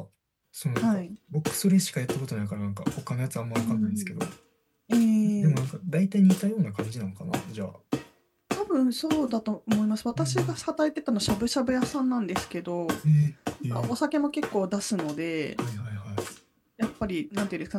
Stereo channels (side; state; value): both; identical; correlation 1.00